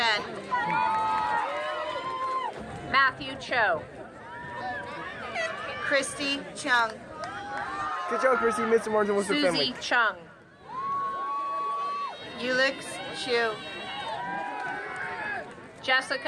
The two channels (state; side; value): identical; both; correlation 1.00